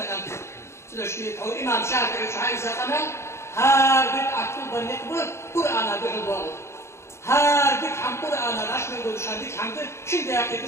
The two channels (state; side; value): late; right; 0.13 ms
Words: تدع شيء أو إمام شافعي وشعائز قمال هادك أكتب النقبل قرآن بحضاره هادك حم قرآن الأشمل ودشان ديك حمد شن دياكي